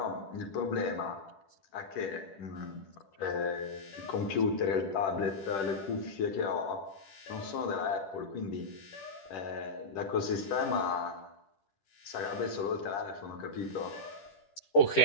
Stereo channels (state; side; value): late; right; 10 ms